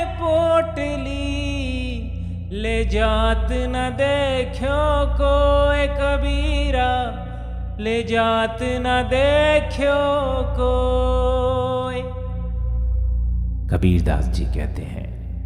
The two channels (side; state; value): both; identical; correlation 1.00